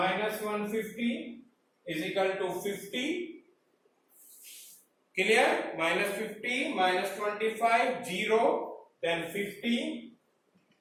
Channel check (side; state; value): both; identical; correlation 1.00